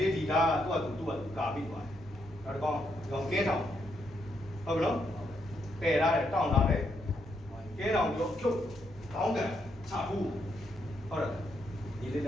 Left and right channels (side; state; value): both; normal; correlation 0.77